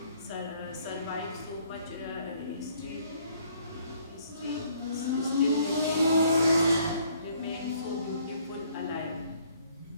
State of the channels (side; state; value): both; inverted; correlation -0.63